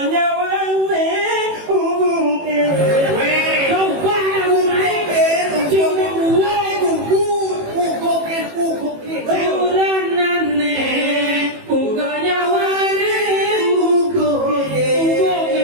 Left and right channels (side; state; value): left; late; 18 ms